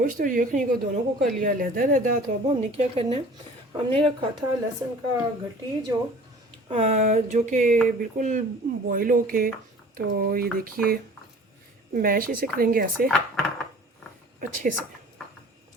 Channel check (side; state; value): both; normal; correlation 0.46